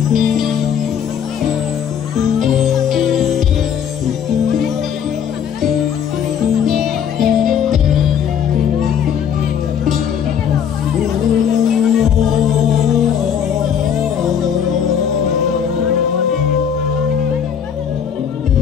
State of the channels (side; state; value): right; quieter; 8.2 dB